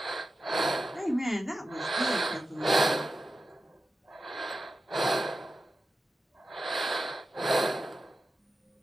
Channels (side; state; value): both; normal; correlation 0.91